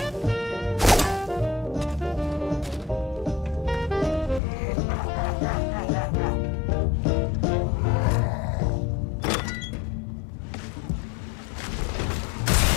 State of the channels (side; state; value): right; drops out; at 4.4 s